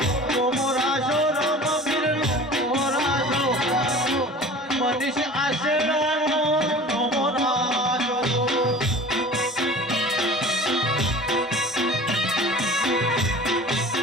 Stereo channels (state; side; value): normal; both; correlation 0.41